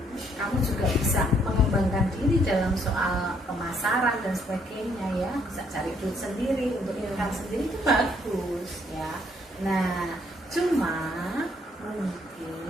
kamu juga bisa mengembangkan diri dalam soal pemasaran dan sebagainya ya, bisa cari duit sendiri untuk income sendiri, itu bagus ya. Nah cuma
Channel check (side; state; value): both; normal; correlation 0.68